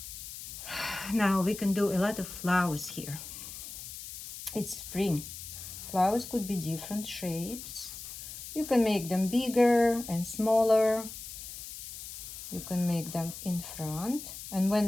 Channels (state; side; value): noise; left; hiss, 11 dB below the sound